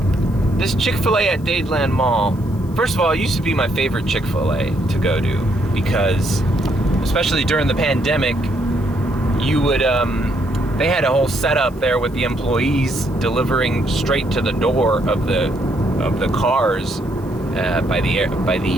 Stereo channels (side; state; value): left; noise; hiss, 27 dB below the sound